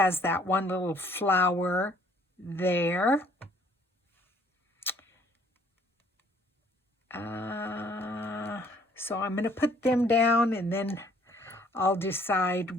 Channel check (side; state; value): both; normal; correlation 0.60